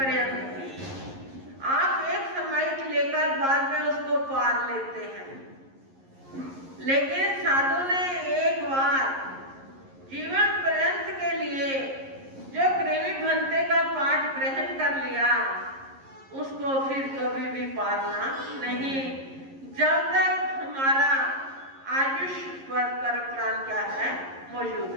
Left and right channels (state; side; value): late; left; 11 ms